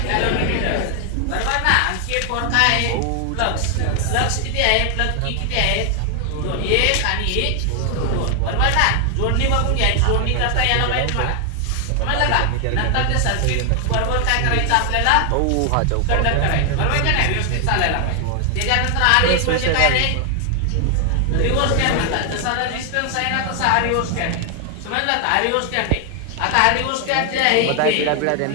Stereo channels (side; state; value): both; different; correlation 0.00